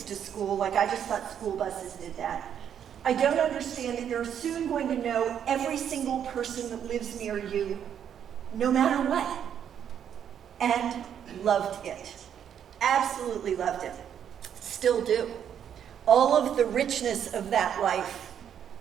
to school, like I just thought school buses did that. I don't understand that you're soon going to know every single person that lives near you, no matter what. And loved it. Absolutely loved it. Still do. All of the richness of that life,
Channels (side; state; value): left; quieter; 8.9 dB